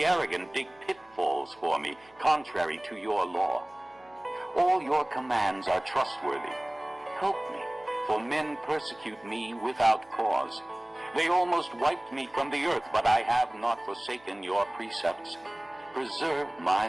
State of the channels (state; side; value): noise; right; hum, 29 dB below the sound